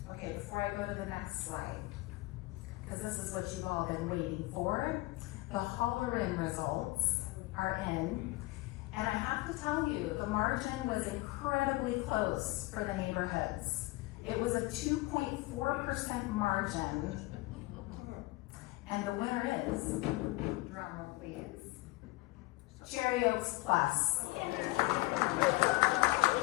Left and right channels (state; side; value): quieter; right; 21.5 dB